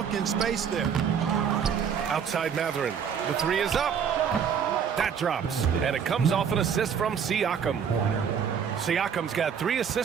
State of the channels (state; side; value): quieter; left; 7.5 dB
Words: in space there. Outside Mathurin. The 3 is up. That drops. And it comes off an assist from Siakam. Siakam's got 3